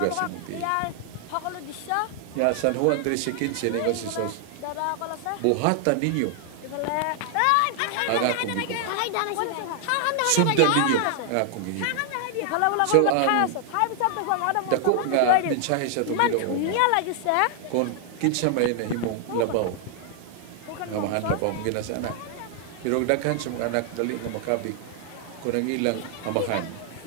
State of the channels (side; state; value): both; different; correlation 0.00